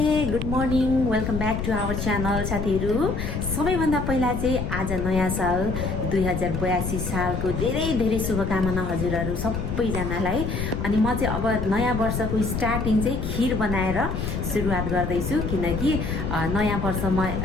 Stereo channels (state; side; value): noise; left; rumble, 3 dB below the sound